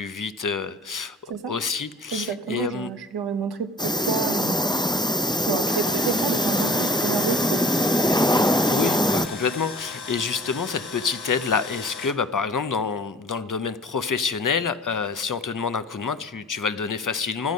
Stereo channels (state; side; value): normal; both; correlation 0.49